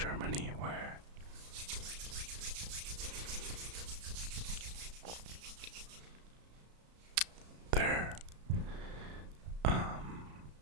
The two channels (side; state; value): left; late; 34 ms